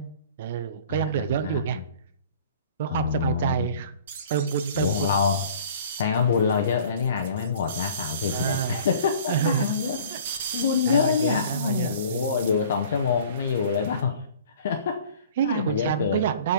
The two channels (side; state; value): both; inverted; correlation -0.48